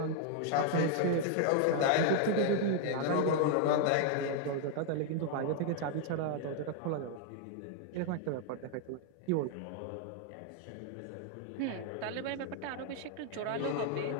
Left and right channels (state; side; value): different; both; correlation 0.00